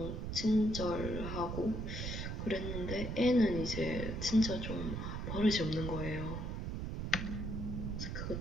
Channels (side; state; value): right; noise; rumble, 3 dB below the sound